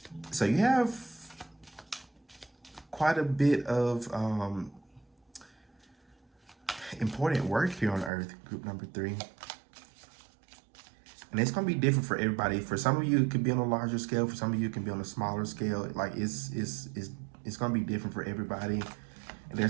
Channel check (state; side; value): drops out; left; at 8.1 s